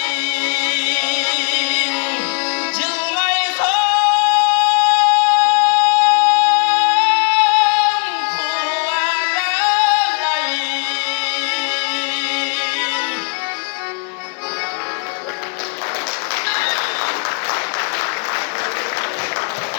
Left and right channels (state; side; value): quieter; right; 36.4 dB